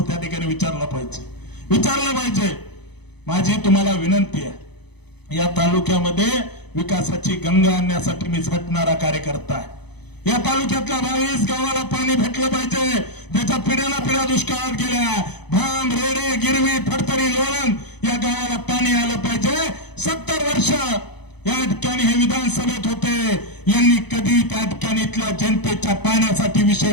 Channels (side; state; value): right; late; 0.98 ms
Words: त्या ठिकाणी विचारलं पाहिजे. माझी तुम्हाला विनंती आहे, या तालुक्यामध्ये विकासाची गंगा आणण्यासाठी मी झटणारा कार्यकर्ता आहे. या तालुक्यातल्या 22 गावाला पाणी भेटलं पाहिजे, त्याच्या पिढ्याला पिढ्या दुष्काळात गेल्या. भाम, रेडे, गिरवी, फडतरी, लोणंद या गावाला पाणी आलं पाहिजे. 70 वर्ष या ठिकाणी हे विधानसभेत होते, यांनी कधी त्या ठिकाणी इथल्या जनतेच्या पाण्यासाठी विषय